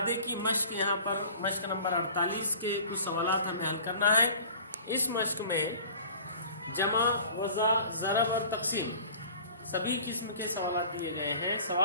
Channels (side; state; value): both; inverted; correlation -0.45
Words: की मश्क, यहाँ पर मश्क नंबर 48 के कुछ सवालात हमें हल करना है। इस मश्क में जमा, वज़ा, ज़रब और तक़सीम सभी किस्म के सवाल दिए गए हैं।